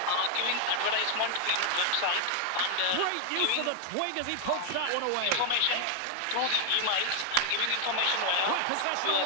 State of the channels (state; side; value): different; both; correlation 0.00